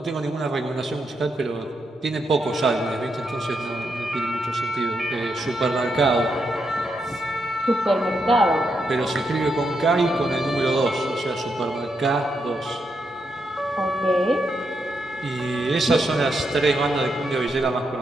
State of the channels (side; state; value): both; normal; correlation 0.82